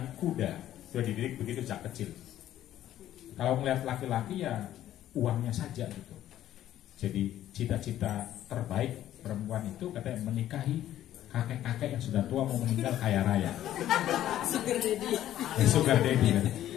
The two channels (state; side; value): quieter; right; 12.5 dB